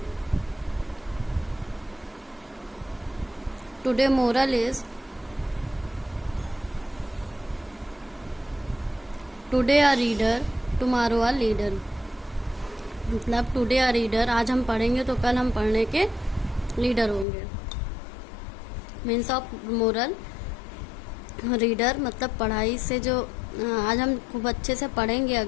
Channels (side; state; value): right; drops out; at 17.2 s